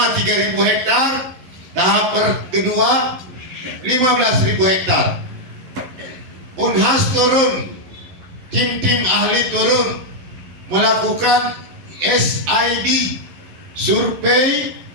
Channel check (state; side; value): late; left; 11 ms